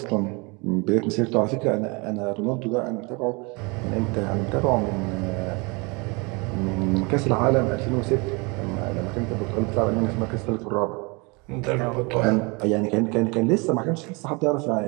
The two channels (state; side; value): quieter; left; 28.8 dB